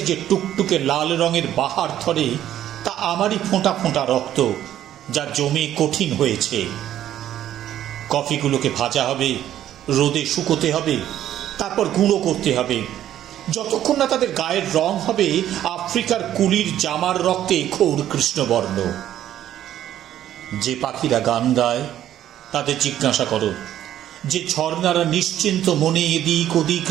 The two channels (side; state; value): left; quieter; 11.7 dB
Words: যে টুকটুকে লাল রঙের বাহার ধরে, তা আমারই ফোঁটা ফোঁটা রক্ত, যা জমে কঠিন হয়েছে। কফিগুলোকে ভাজা হবে, রোদে শুকোতে হবে, তারপর গুঁড়ো করতে হবে, যতক্ষণ না তাদের গায়ের রং হবে আফ্রিকার কুলির জামার রক্তে খৌর কৃষ্ণবর্ণ। যে পাখিরা গান গায় তাদের জিজ্ঞাসা করো, যে ঝর্ণারা নিশ্চিন্ত মনে এদিক ওদিক